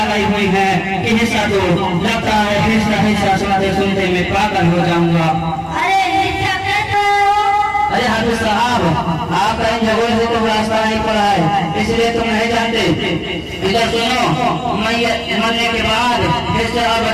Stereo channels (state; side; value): identical; both; correlation 1.00